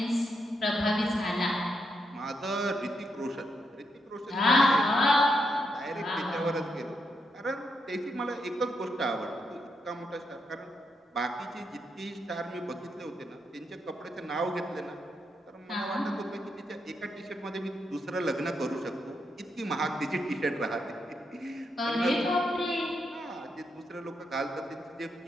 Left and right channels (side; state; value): both; normal; correlation 0.81